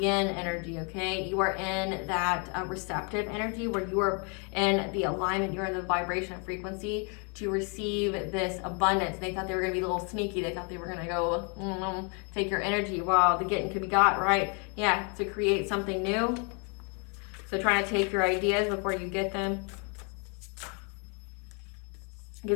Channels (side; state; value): right; quieter; 35.8 dB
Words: energy, okay? You are in that receptive energy where you are in the alignment, you're in the vibration and frequency to receive this abundance. They thought they were going to be a little sneaky. They thought they were going to go take your energy. Wow, the getting could be got, right? Yeah, to create something new. So trying to take your ideas before you get them. Because